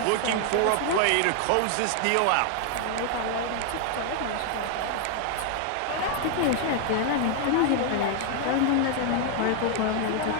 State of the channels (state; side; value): different; both; correlation 0.00